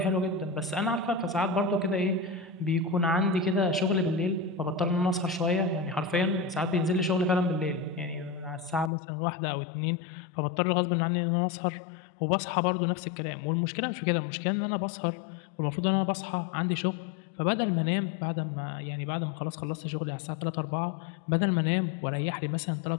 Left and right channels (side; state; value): right; drops out; at 8.9 s